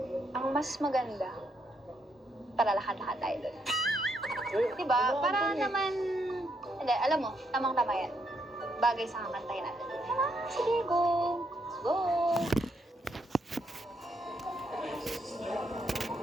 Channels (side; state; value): both; normal; correlation 0.76